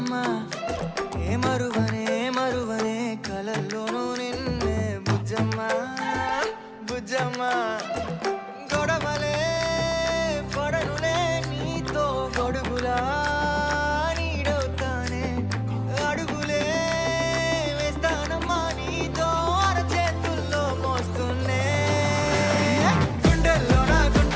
ఏ మరువనే కలల్లోనూ నిన్నే బుజ్జమ్మ బుజ్జమ్మ గొడవలే పడనులే నీతో గొడుగులా నీడవుతానే అడుగులే వేస్తానమ్మా నీతో అరచేతుల్లో మోస్తున్నే గుండెల్లోనా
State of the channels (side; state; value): both; identical; correlation 1.00